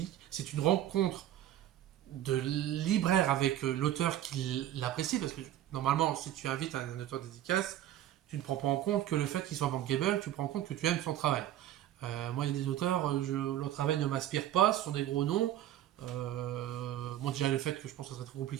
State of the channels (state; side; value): quieter; left; 12.5 dB